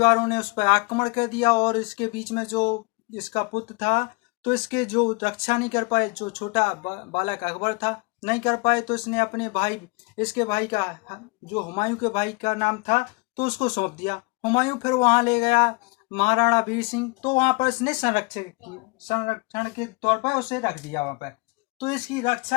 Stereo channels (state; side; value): quieter; right; 28.0 dB